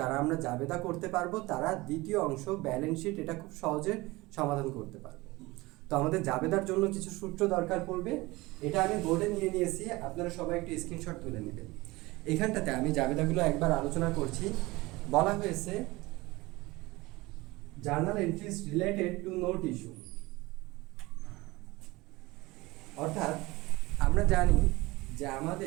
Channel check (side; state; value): left; quieter; 21.4 dB